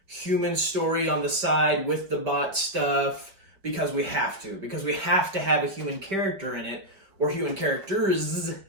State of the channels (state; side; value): late; left; 5.1 ms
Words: human story on the side with the bot stuff because we have to. Because we have to have a human character in it, or human characters